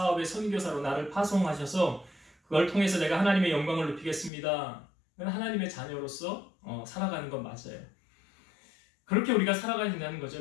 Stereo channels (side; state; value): right; drops out; at 4.3 s